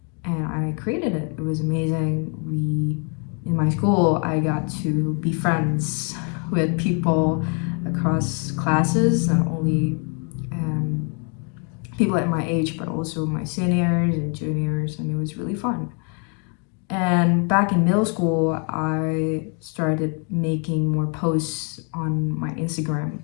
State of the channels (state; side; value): quieter; right; 38.2 dB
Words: And I created it. It was amazing. In my school, I got to be friends with people across classes, not only people at my age, but also my seniors and juniors, and it was really fun. And back in middle school, I started making more posts on my Instagram,